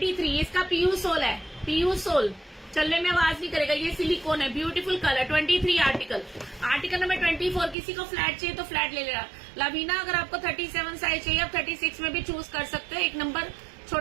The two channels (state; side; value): drops out; left; at 7.8 s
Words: इसका पीयू सोल है, पीयू सोल, चलने में आवाज नहीं करेगा, ये सिलिकॉन है, beautiful colour. 23 article. Article number 24 किसी को फ्लैट चाहिए तो फ्लैट ले लेना। लवीना अगर आपको 37 साइज चाहिए, आप 36 में भी चूज कर सकते हो, एक नंबर